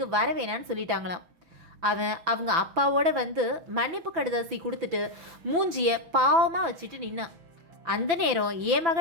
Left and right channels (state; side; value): late; left; 6.0 ms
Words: வர வேணான்னு சொல்லிட்டாங்களாம். அவன் அவங்க அப்பாவோட வந்து மன்னிப்பு கடிதாசி கொடுத்துட்டு மூஞ்சியை பாவமாக வச்சுட்டு நின்னான். அந்த நேரம் என்